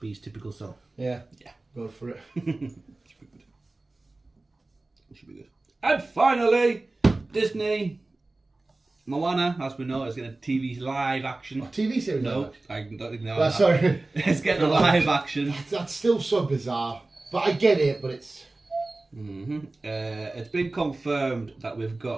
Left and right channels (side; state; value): left; quieter; 3.1 dB